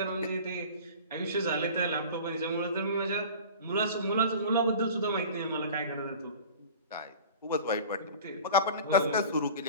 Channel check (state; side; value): inverted; both; correlation -0.40